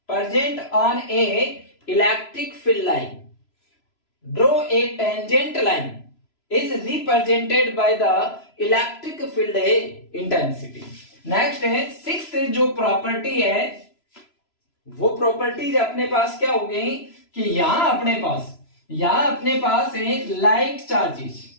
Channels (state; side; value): late; right; 3.0 ms